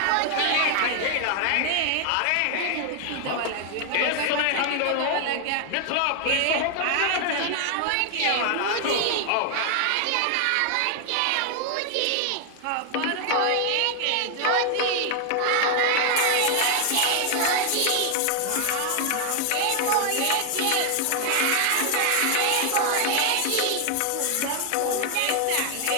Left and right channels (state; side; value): different; both; correlation 0.00